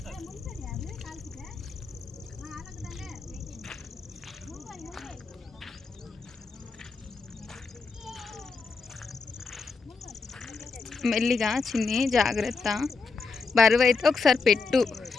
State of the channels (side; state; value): right; quieter; 4.6 dB